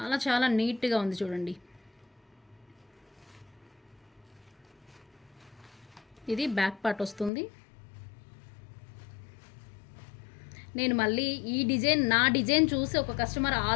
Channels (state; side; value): drops out; right; at 7.3 s